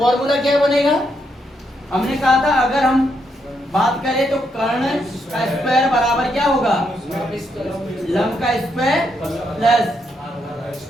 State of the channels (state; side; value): normal; both; correlation 0.78